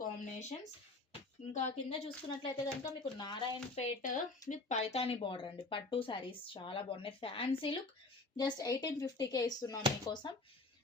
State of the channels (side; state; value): right; quieter; 3.2 dB